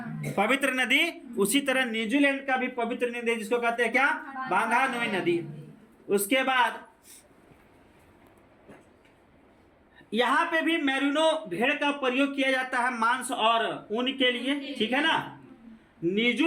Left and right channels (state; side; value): identical; both; correlation 1.00